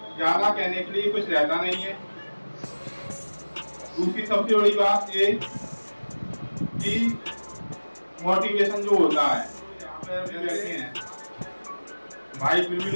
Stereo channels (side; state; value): both; inverted; correlation -1.00